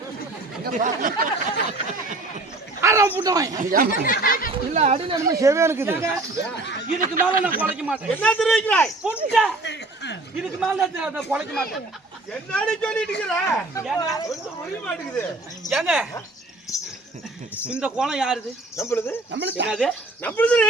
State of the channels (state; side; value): quieter; left; 3.0 dB